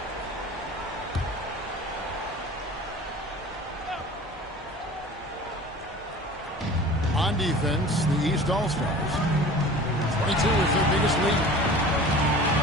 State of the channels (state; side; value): normal; both; correlation 0.41